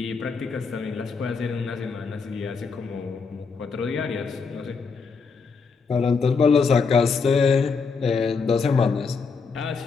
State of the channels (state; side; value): quieter; right; 5.1 dB